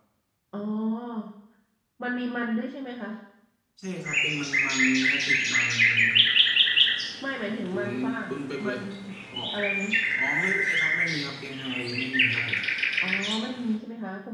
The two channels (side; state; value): both; identical; correlation 1.00